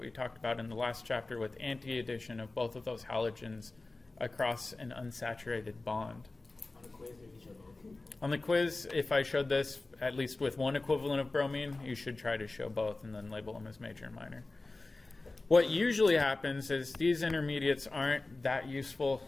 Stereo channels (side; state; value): right; quieter; 3.2 dB